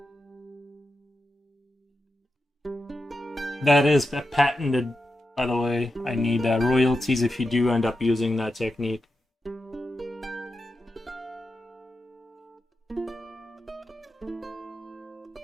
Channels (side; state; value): both; normal; correlation 0.89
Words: That is patented, by the way. I need royalties if you do end up using that technique.